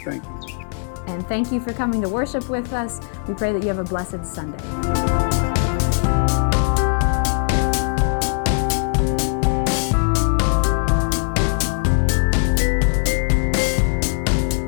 Thank you. And thank you for coming to worship with us. We pray that you have a blessed Sunday.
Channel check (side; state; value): right; silent; 57 dB below the other